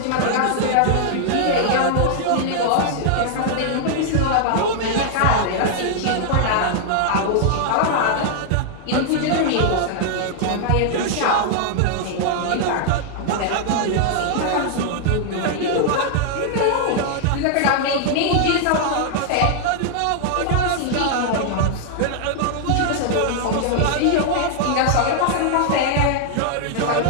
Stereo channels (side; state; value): both; different; correlation -0.01